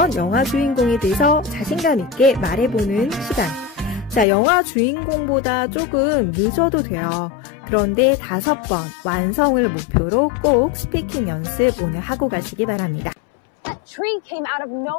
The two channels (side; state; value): right; drops out; at 4.2 s